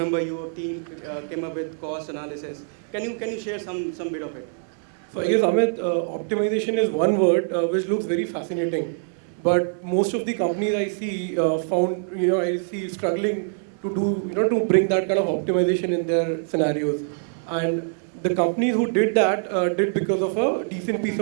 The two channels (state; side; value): silent; left; digital silence